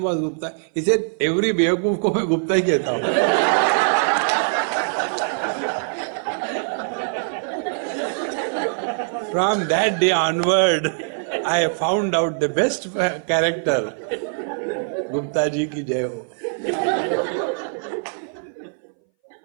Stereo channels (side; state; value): left; silent; 61 dB below the other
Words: was Gupta? He said, every बेवकूफ को मैं गुप्ता ही कहता हूँ. From that day onward, I found out the best character. Gupta ji ki jai ho.